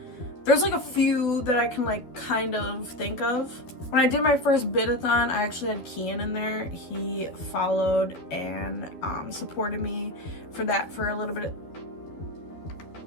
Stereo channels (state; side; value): late; right; 12 ms